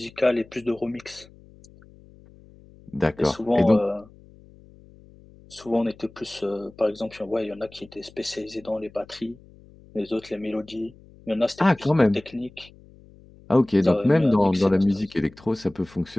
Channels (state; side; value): noise; left; hum, 24 dB below the sound